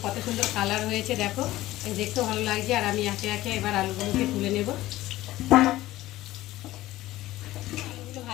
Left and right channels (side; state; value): right; quieter; 16.3 dB